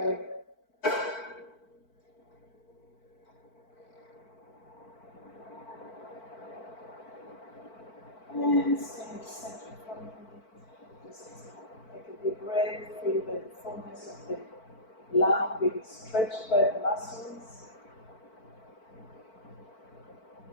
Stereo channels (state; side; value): late; right; 4.5 ms